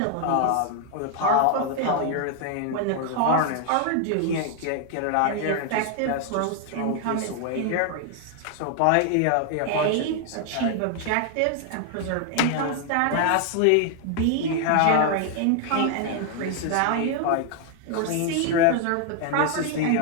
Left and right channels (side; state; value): both; different; correlation 0.00